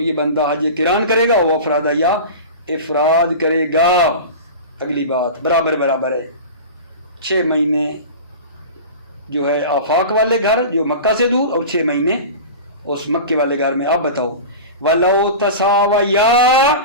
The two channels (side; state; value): both; inverted; correlation -0.32